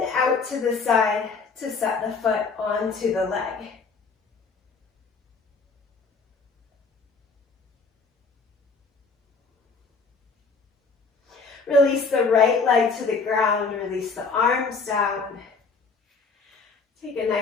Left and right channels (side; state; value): right; quieter; 4.6 dB